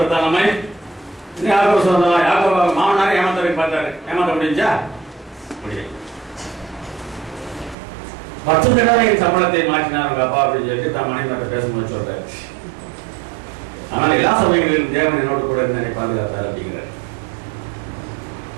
நம்மை யாக்கோபு சுதந்திரம் யாக்கோபு மாமனாரை ஏமாத்தவரை பார்த்தாரு. ஏமாத்த முடிஞ்சா முடியும். 10 தடவை என் சம்பளத்தை மாற்றினார் உங்க அப்பா அப்படின்னு சொல்லிட்டு தான் மனைவி பேசும்போது சொல்றாரு. ஆனால் எல்லா சமயங்களிலும் தேவன் என்னோடு கூட என்னை பாதுகாத்தார் அப்படிங்கிறார்.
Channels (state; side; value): drops out; left; at 7.8 s